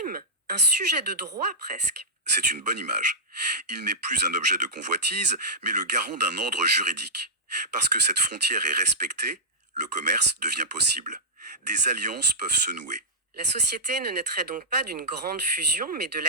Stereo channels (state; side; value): normal; both; correlation -0.09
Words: un sujet de droit presque. C'est une bonne image. Il n'est plus un objet de convoitise, mais le garant d'un ordre juridique. Parce que cette frontière est respectée, le commerce devient possible. Des alliances peuvent se nouer. La société ne naîtrait donc pas d'une grande fusion, mais de